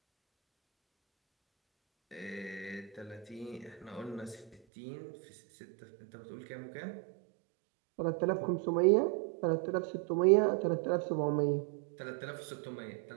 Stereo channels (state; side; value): drops out; left; at 4.5 s